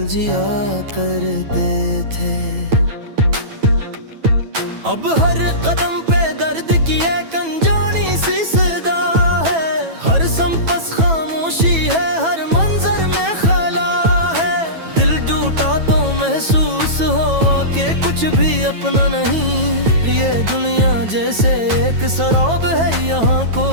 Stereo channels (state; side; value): late; left; 9.1 ms